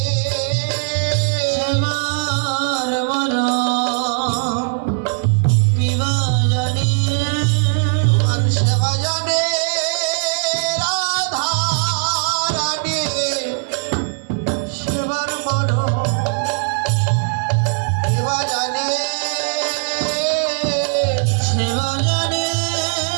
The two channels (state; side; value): silent; left; 60 dB below the other